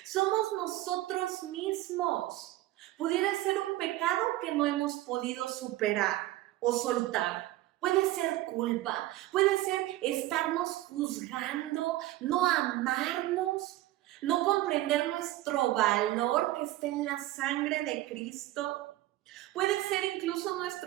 Somos nosotros mismos. Pudiera ser un pecado que no hemos podido superar o soltar. Puede ser culpa, puede ser estarnos juzgando, no amarnos, no comprender nuestro valor que está en la sangre de Cristo. Puede ser incluso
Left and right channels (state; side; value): quieter; left; 16.3 dB